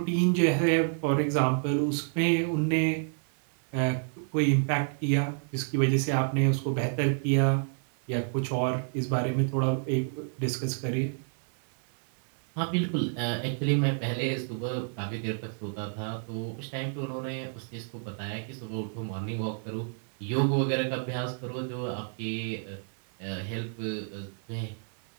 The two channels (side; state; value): left; silent; 58 dB below the other